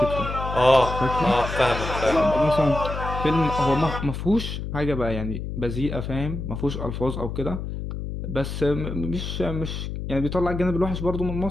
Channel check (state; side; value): noise; left; hum, 6 dB below the sound